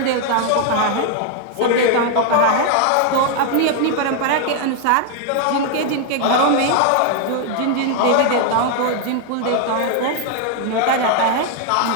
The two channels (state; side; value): different; both; correlation 0.00